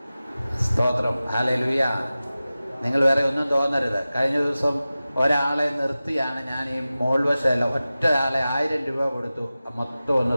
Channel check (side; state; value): both; inverted; correlation -0.96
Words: സ്തോത്രം. ഹല്ലേലൂയ. നിങ്ങൾ വേറെ ഒന്നും തോന്നരുത്. കഴിഞ്ഞ ദിവസം ഒരാളെ നിർത്തിയാണ് ഞാൻ ഈ മോൾവശമല്ല, ഒറ്റയാളെ 1000 രൂപ കൊടുത്തു മൊത്തം ഒന്ന്